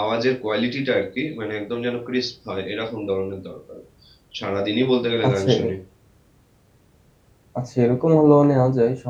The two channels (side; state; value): both; identical; correlation 1.00